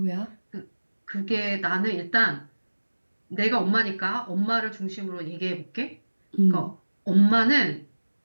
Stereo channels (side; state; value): both; inverted; correlation -1.00